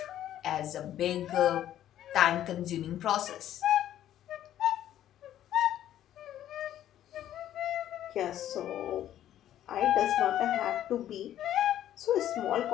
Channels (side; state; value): right; quieter; 11.8 dB